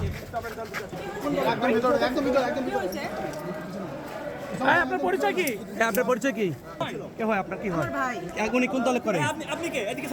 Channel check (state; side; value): identical; both; correlation 1.00